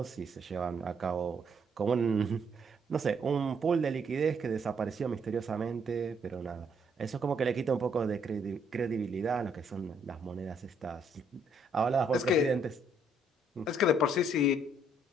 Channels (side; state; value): both; normal; correlation 0.69